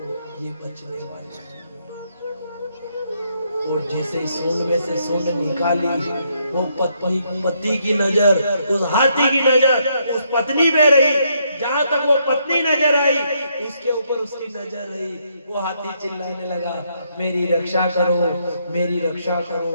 ये बचने वाले। और जैसे सूंड में से सूंड निकाली, वो पति की नजर, उस हाथी की नजर उस पत्नी पे रही। जहां तक वो पत्नी नजर आई, उसके ऊपर उसकी नजर रही। वो हाथी चिल्लाने लगा मेरी रक्षा करो, मेरी रक्षा करो।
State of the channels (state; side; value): inverted; both; correlation -0.74